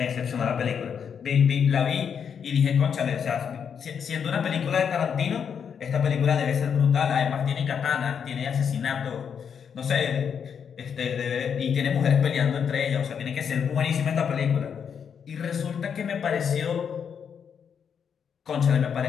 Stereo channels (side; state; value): right; quieter; 7.3 dB